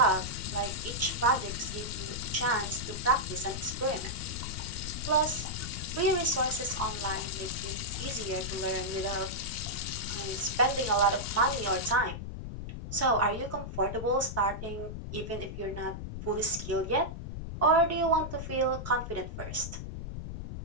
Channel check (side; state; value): left; noise; rumble, 7 dB below the sound